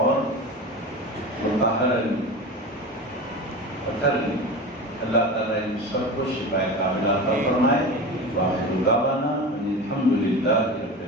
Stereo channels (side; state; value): both; normal; correlation 0.29